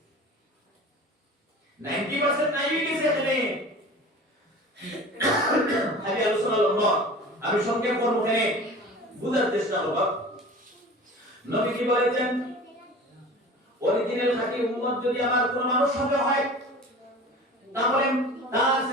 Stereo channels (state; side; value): normal; both; correlation 0.39